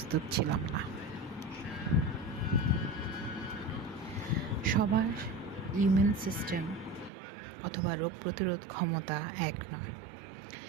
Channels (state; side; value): drops out; left; at 7.1 s